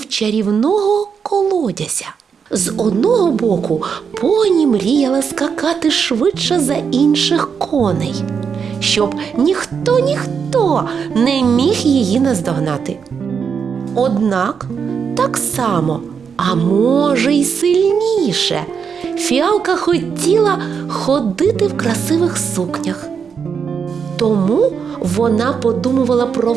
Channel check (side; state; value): left; quieter; 6.5 dB